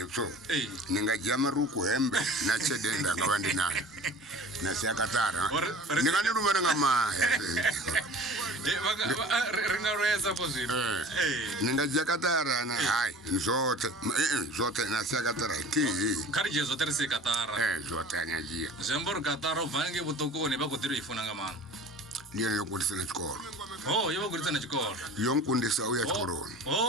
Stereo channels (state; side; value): normal; both; correlation 0.43